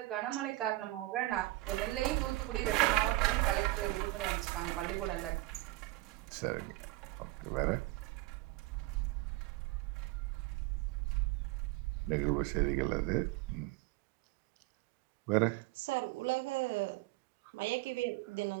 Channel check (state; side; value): quieter; left; 19.4 dB